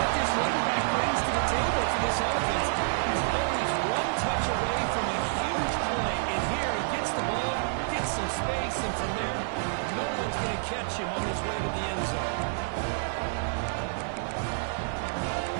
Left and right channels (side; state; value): left; silent; digital silence